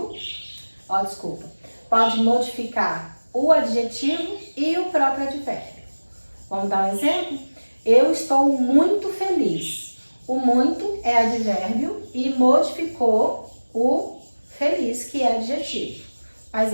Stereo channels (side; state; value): both; inverted; correlation -1.00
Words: pode modificar o adjetivo e o próprio advérbio. Vamos dar um exemplo? Eu estou muito feliz. O muito é advérbio e modificou o feliz, que é adjetivo. Mas